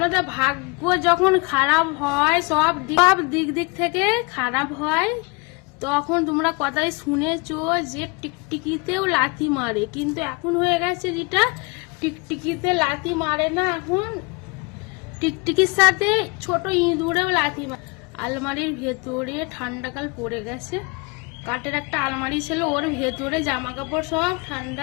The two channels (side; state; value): right; quieter; 29.3 dB